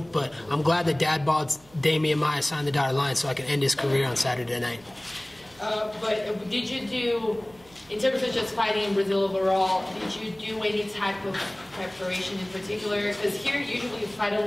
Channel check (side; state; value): right; noise; hum, 28 dB below the sound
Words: but I'm glad that Dad bought Demian Maia signed the dotted line so I can end his career on Saturday night. But did you do, in terms of just fighting in Brazil overall, did you do any type of preparation in particular? Because here usually you fight a